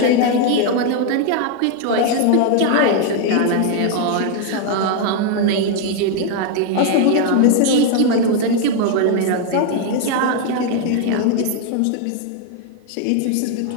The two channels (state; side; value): different; both; correlation 0.00